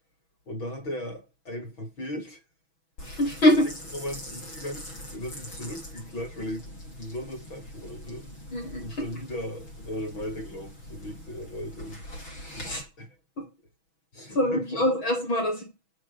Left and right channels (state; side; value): late; right; 6.2 ms